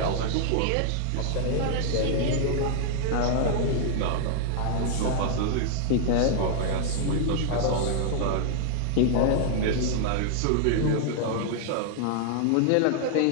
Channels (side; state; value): both; different; correlation -0.01